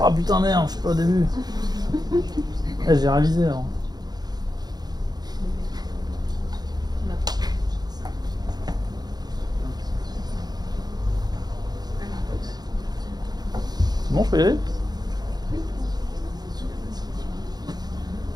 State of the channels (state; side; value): late; left; 0.19 ms